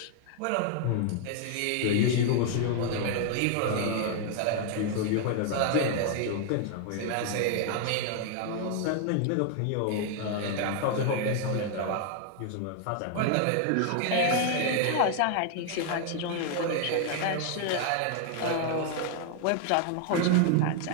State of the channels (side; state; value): both; different; correlation 0.00